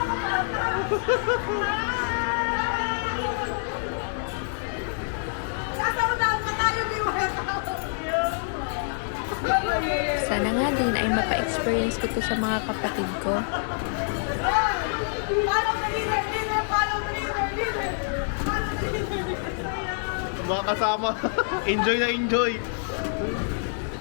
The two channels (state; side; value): silent; right; 59 dB below the other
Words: Sana nga din ay mapa-experience ko to sa mga kapatid ko. Follow the leader! Follow the leader! mga kasama. Enjoy na enjoy.